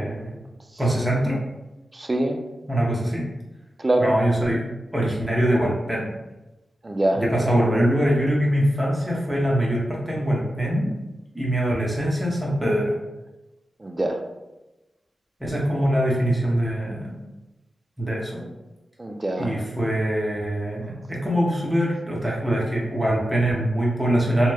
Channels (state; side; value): normal; both; correlation 0.90